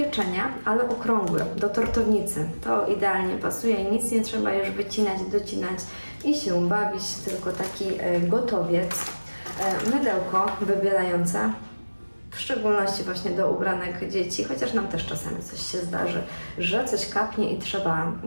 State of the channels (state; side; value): inverted; both; correlation -1.00